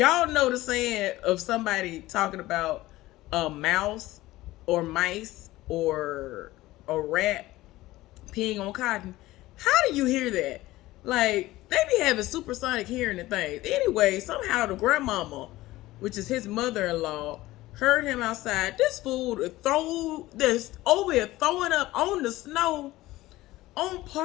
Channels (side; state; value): right; quieter; 17.5 dB